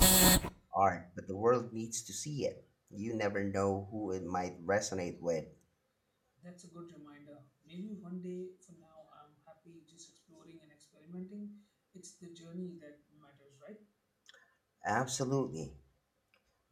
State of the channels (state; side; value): identical; both; correlation 1.00